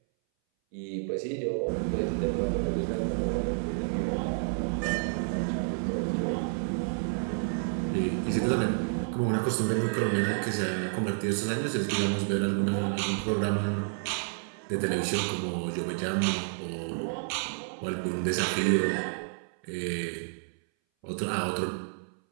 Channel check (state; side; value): silent; left; 58 dB below the other